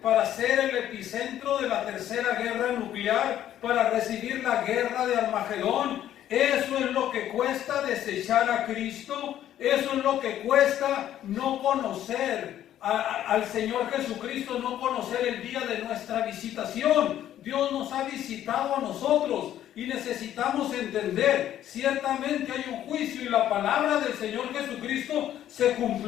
para ser el epicentro de la tercera guerra nuclear, para recibir la guerra de Armagedón. Eso es lo que cuesta desechar a Cristo. Eso es lo que cuesta no conocer al Señor Jesucristo, no conocer el día de nuestra visitación. Dios nos ha visitado a nosotros y necesitamos entender, ciertamente hay un juicio y la palabra del Señor Jesucristo se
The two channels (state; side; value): quieter; right; 11.6 dB